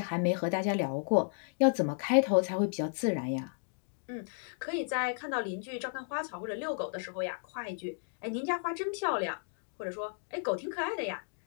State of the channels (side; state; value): right; silent; digital silence